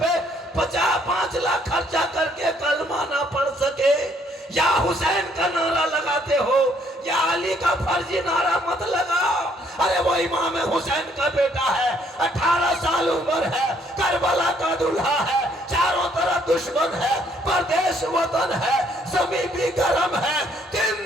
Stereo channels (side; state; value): both; normal; correlation 0.66